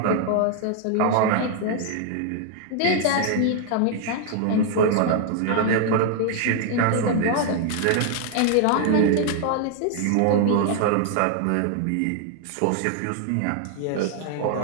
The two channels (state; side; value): different; both; correlation 0.00